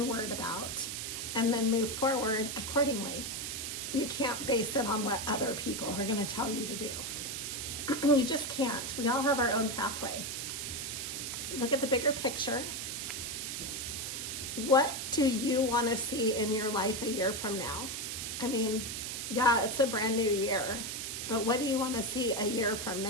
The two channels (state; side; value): noise; right; hiss, 4 dB below the sound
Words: about and then move forward accordingly. You can't base it on what other people are going to tell you to do. You just can't. We all have our own pathway. Look at the bigger picture. What do you want to see in your life a year from now? I mean, yeah, it's a brand new year, but what do you want to see a year from